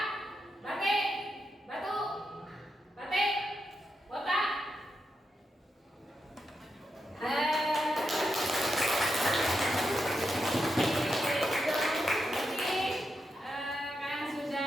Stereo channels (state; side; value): normal; both; correlation 0.85